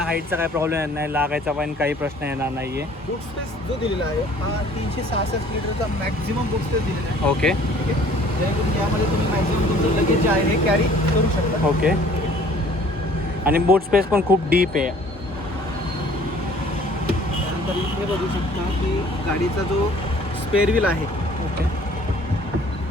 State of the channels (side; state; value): both; normal; correlation 0.54